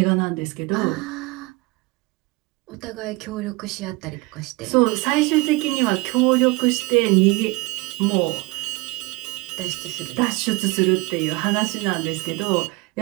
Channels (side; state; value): left; quieter; 23.7 dB